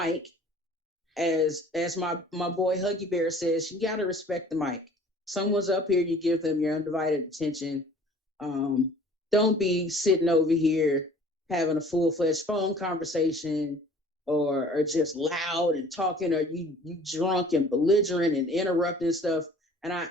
As my boy Huggy Bear says, you got to respect the mic. Someone's up here, you give them your undivided attention. Don't be sitting over here having a full-fledged phone conversation or just loud and talking, or you drunk and belligerent and interrupting stuff. And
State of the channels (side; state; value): both; normal; correlation 0.50